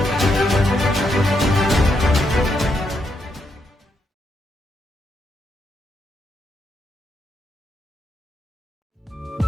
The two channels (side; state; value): both; normal; correlation 0.79